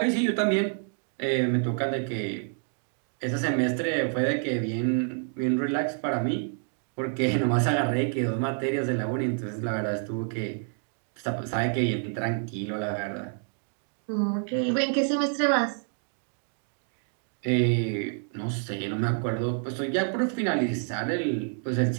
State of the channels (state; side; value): silent; left; 59 dB below the other